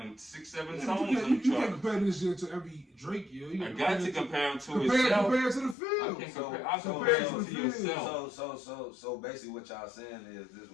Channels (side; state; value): right; drops out; at 5.8 s